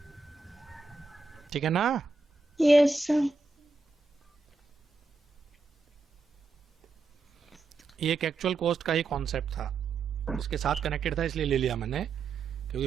ठीक है ना? Yes sir. ये एक एक्चुअल कॉस्ट का ही कॉन्सेप्ट था, इसके साथ कनेक्टेड था इसलिए ले लिया मैंने,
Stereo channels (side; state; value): left; quieter; 4.0 dB